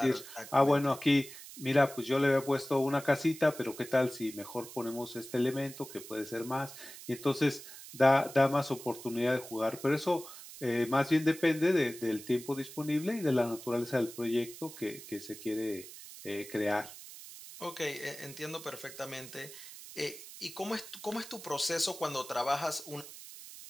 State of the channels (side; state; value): right; noise; hiss, 14 dB below the sound